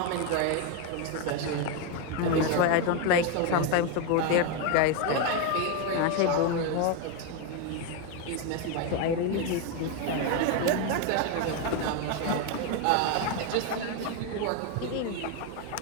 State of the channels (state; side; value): different; both; correlation 0.02